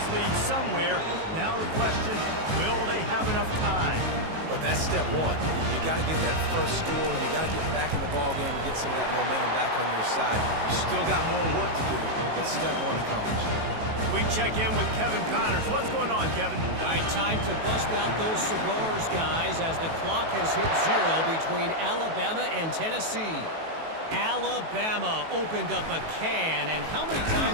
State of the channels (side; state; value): left; late; 18 ms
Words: lead somewhere. Now the question, will they have enough time? But that's step one. You got to get that first score. You got to get back in the ball game and get some of that momentum back on your side. You still got more work to do, but step one accomplished. We check in with Kevin Connors. What's going on, Kevin? All right, time to bust out those cigars, guys, as the clock has hit 0 between Alabama and Tennessee. Alabama opened up a can, and how many